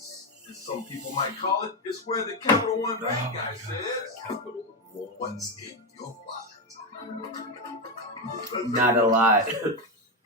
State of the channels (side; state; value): both; normal; correlation 0.10